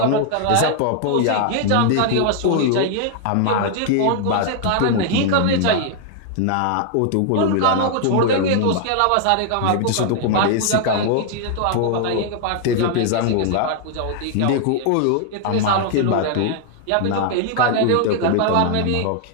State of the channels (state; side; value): different; both; correlation 0.00